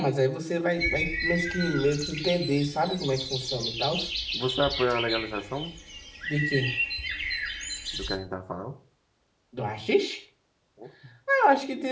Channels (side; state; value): both; identical; correlation 1.00